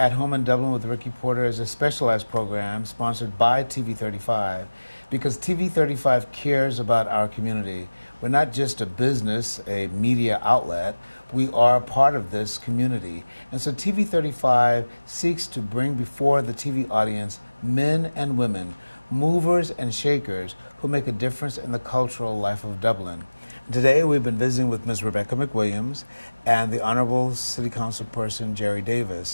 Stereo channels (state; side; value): inverted; both; correlation -1.00